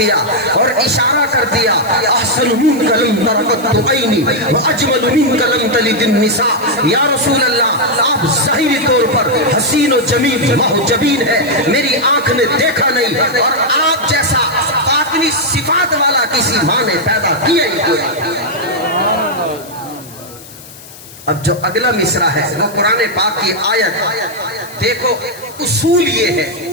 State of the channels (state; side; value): noise; left; hiss, 19 dB below the sound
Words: اور اشارہ کر دیا احسن منک لم تر قط عینی واجمل منک لم تلد النساء۔ یا رسول اللہ آپ ظاہری طور پر حسین و جمیل محجبین ہیں، میری آنکھ نے دیکھا نہیں، اور آپ جیسا باطنی صفات والا کسی ماں نے پیدا کیا ہی کوئی۔ اب جو اگلا مصرع ہے وہ قرآن پاک کی آیت، دیکھو اصول یہ ہے